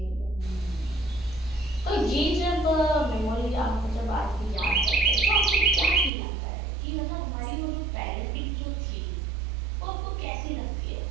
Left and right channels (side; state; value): left; drops out; at 6.1 s